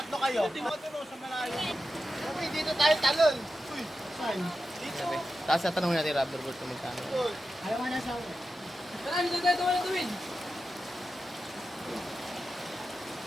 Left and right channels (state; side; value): normal; both; correlation 0.91